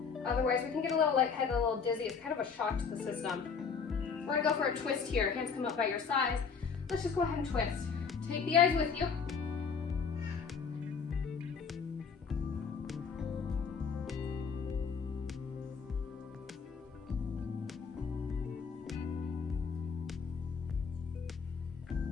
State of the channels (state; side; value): quieter; right; 5.8 dB